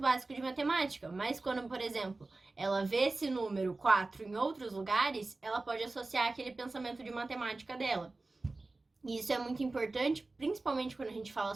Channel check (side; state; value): left; quieter; 3.3 dB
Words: básico de matemática, mas quando, por exemplo, ela vê esse número 4 em outros lugares, ela pode associar aquele pensamento de matemática dela. E isso é muito importante, principalmente quando a gente fala